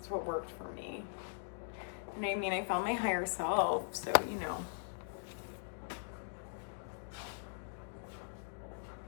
what worked for me. And I mean, I found my higher self, so you know.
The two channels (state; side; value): silent; right; digital silence